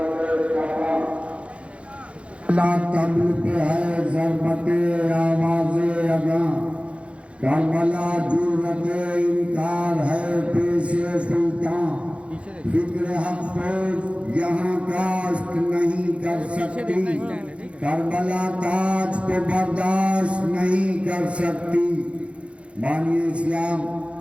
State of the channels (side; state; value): left; late; 0.061 ms